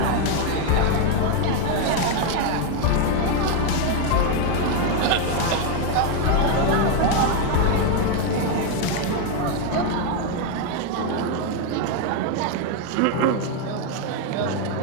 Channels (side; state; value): both; different; correlation 0.01